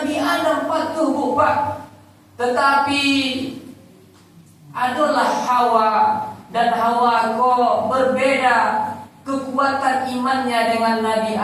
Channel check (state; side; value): identical; both; correlation 1.00